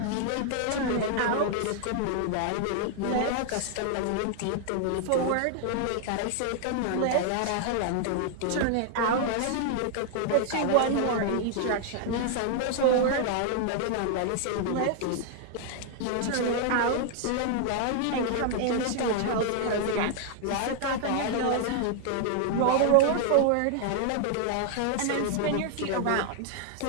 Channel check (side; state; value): both; different; correlation 0.00